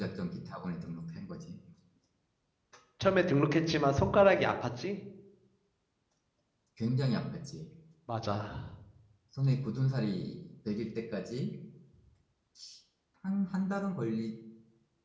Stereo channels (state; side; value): identical; both; correlation 1.00